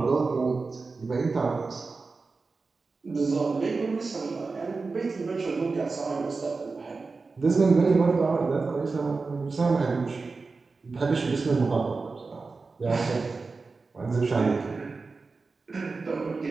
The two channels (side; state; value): left; quieter; 4.1 dB